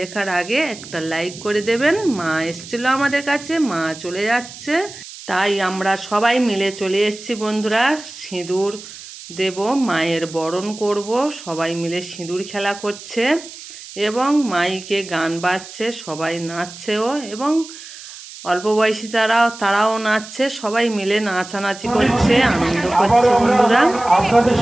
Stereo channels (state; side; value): noise; right; hiss, 15 dB below the sound